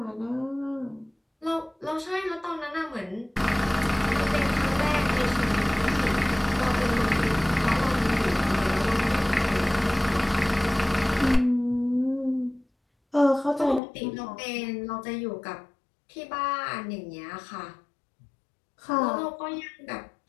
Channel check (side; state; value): right; drops out; at 13.8 s